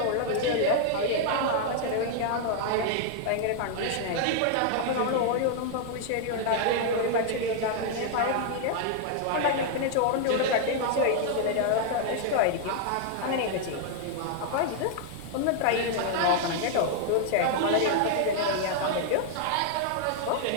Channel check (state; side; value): different; both; correlation 0.00